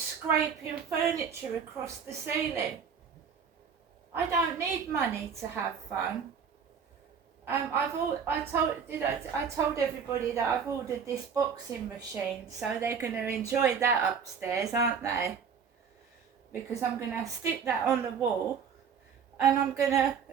furniture across the ceiling. I don't need money to have fun. I told everybody that I've ordered this boxing machine, so they're going to enjoy that upstairs, aren't they? Because I'm going to stick that on the wall, and I'm going to,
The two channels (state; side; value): quieter; left; 6.7 dB